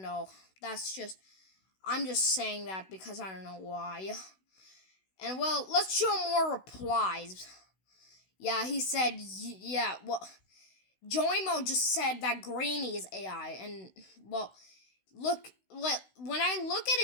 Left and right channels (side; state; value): right; late; 16 ms